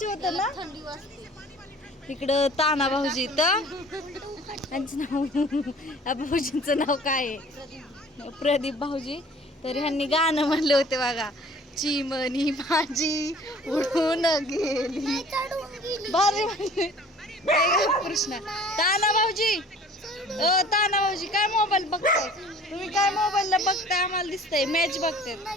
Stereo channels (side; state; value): both; normal; correlation 0.49